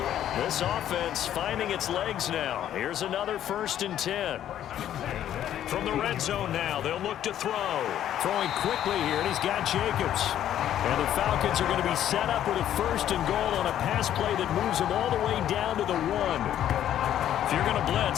This offense finding its legs now. Here's another 1st and 10. From the red zone now, they'll look to throw. Throwing quickly here, and he's got Jacobs. And the Falcons are going to be set up with a 1st and goal on a pass play that moves them all the way down to the 1. If you're going to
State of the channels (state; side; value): quieter; right; 11.1 dB